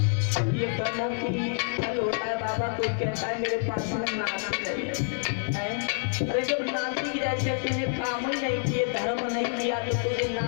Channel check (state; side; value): silent; right; 59 dB below the other